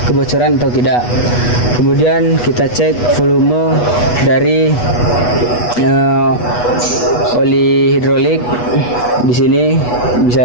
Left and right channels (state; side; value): late; right; 8.2 ms